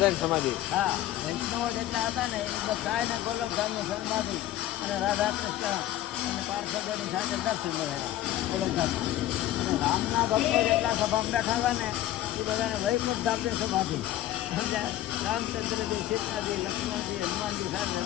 સમાધિ. હા, વૈષ્ણવો જેટલા હતા ને એ બધાને ગોલકધામની સમાધિ અને રાધા કૃષ્ણ અને પાર્ષદોની સાથે દર્શન કરેલા ગોલકધામમાં. અને રામના ભક્તો જેટલા સભામાં બેઠા હતા ને એ બધાને વૈકુંઠ ધામની સમાધિ. સમજ્યા? રામચંદ્રજી, સીતાજી, લક્ષ્મણજી, હનુમાનજી સાથે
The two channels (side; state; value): right; quieter; 13.6 dB